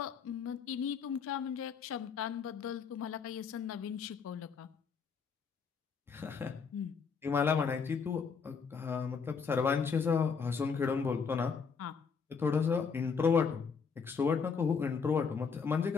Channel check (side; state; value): right; quieter; 5.8 dB